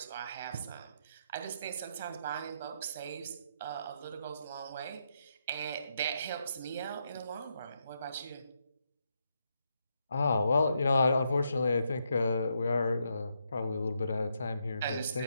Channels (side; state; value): both; inverted; correlation -0.80